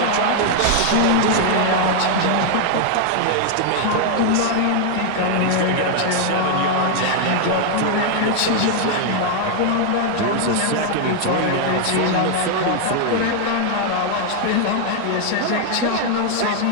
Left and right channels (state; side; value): different; both; correlation 0.00